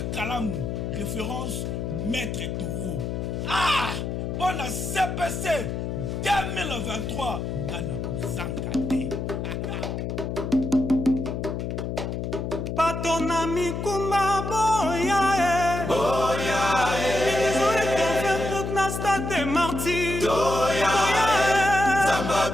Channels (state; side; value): noise; left; hum, 3 dB below the sound